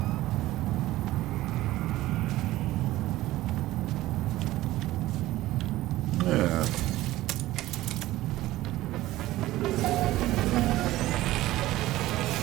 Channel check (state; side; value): quieter; left; 16.3 dB